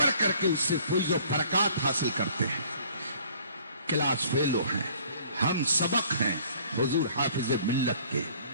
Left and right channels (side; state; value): both; inverted; correlation -0.56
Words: کر کے اس سے فیض و برکات حاصل کرتے ہیں، کلاس فیلو ہیں، ہم سبق ہیں حضور حافظ ملت کے۔